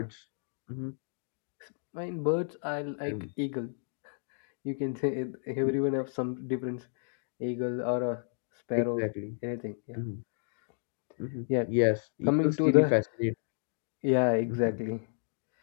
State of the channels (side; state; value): right; silent; digital silence